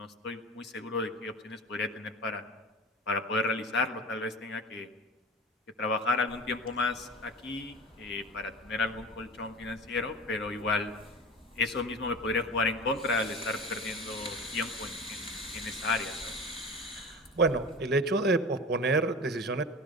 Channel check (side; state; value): both; normal; correlation 0.34